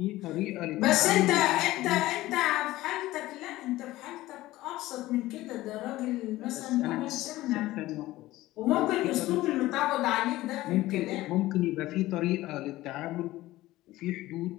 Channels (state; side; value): quieter; right; 17.0 dB